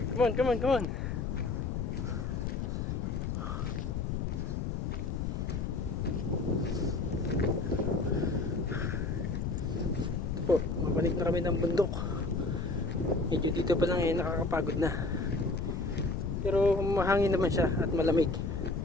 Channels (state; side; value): noise; left; rumble, 1 dB below the sound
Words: Come on, come on, come on. Po, mabalik na kami ng bundok. Medyo dito pa lang nakakapagod na. Pero mahangin naman siya at malamig.